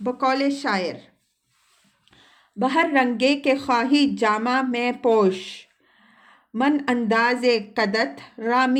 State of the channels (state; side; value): identical; both; correlation 1.00